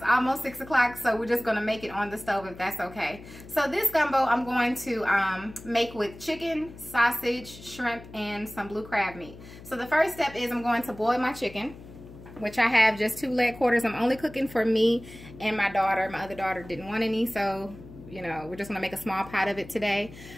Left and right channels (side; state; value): left; noise; hum, 17 dB below the sound